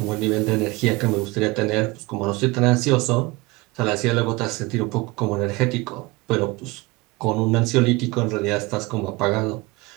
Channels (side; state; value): left; quieter; 23.0 dB